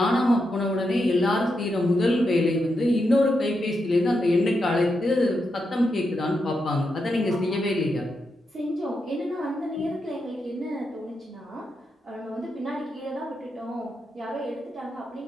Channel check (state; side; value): normal; both; correlation 0.85